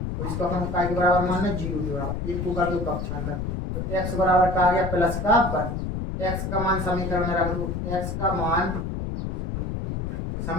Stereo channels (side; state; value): left; noise; rumble, 3 dB below the sound